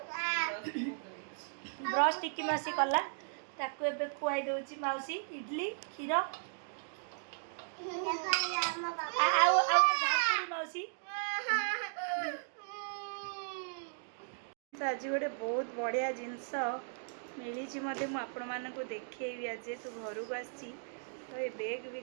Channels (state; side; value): silent; left; digital silence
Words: ब्रश टिकी मासी कला ताकू एबे खुआई दउची मौसी इडली खीर मौसी आज गोटे बहुत बढ़िया जिनस मिली मत आपण मानक देखी आज तू घर को आसी तो ये बैग